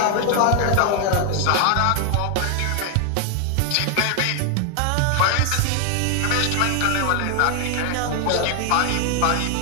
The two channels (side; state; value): both; different; correlation 0.00